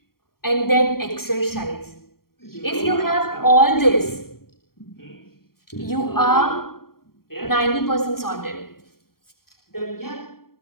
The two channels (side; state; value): right; late; 0.93 ms